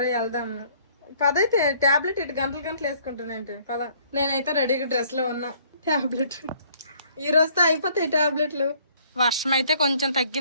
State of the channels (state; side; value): inverted; both; correlation -0.60